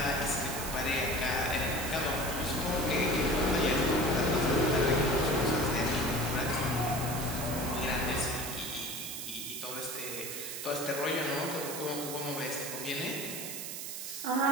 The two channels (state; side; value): noise; right; hiss, 6 dB below the sound